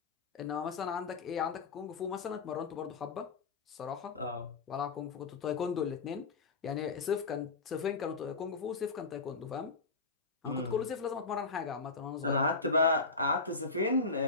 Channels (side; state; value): right; quieter; 4.0 dB